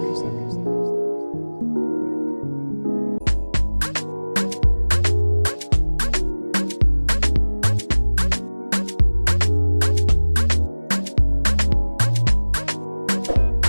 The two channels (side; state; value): both; inverted; correlation -1.00